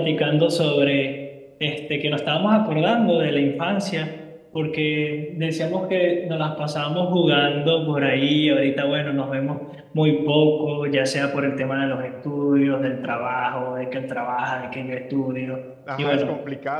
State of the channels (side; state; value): both; identical; correlation 1.00